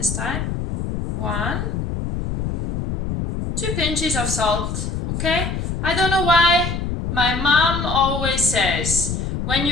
time. 1, 2 pinches of salt, okay? I don't know why my mom always says, when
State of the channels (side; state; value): left; noise; rumble, 3 dB below the sound